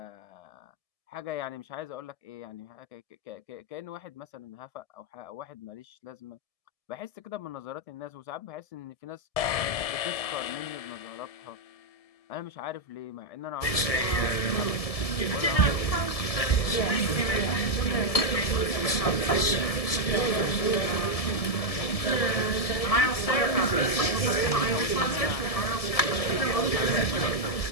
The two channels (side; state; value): right; late; 1.7 ms